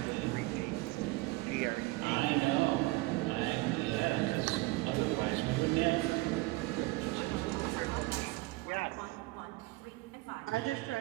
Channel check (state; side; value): quieter; left; 21.9 dB